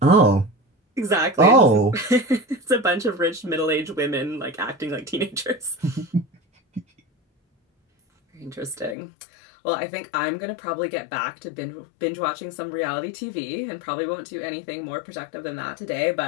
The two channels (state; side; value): drops out; right; at 9.0 s